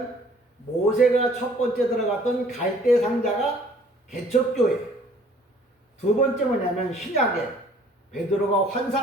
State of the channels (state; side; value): normal; both; correlation 0.56